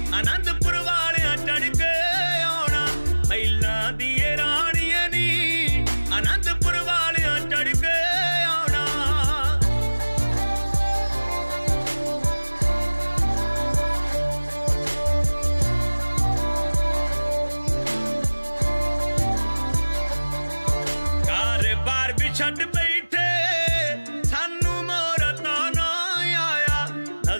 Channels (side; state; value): both; inverted; correlation -1.00